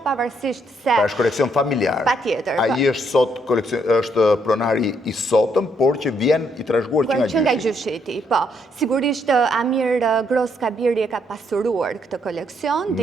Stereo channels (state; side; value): normal; both; correlation 0.73